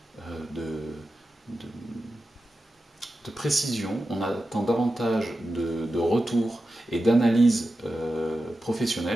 de précision, on attend davantage de retour et d'analyse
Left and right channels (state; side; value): normal; both; correlation 0.92